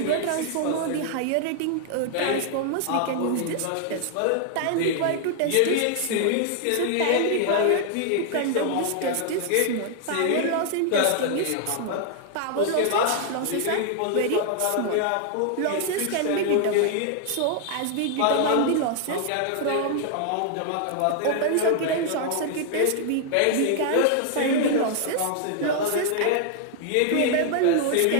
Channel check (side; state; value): both; different; correlation 0.00